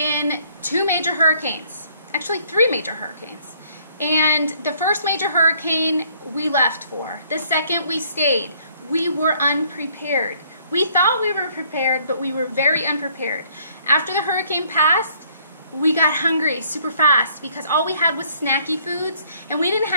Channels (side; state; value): both; inverted; correlation -0.62